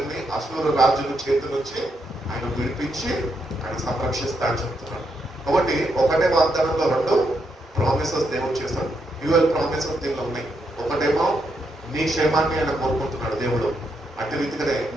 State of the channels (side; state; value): both; normal; correlation 0.80